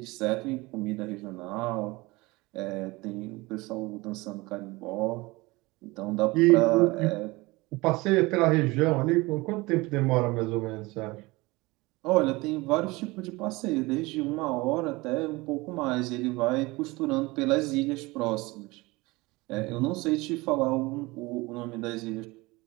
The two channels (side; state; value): left; quieter; 22.6 dB